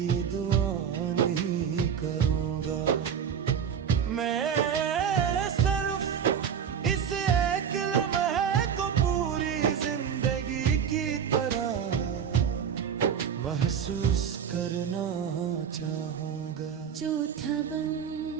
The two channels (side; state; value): left; quieter; 7.8 dB